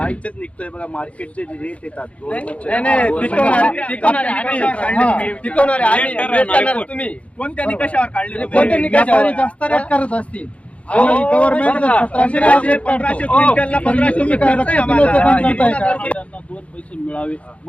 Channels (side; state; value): right; late; 0.063 ms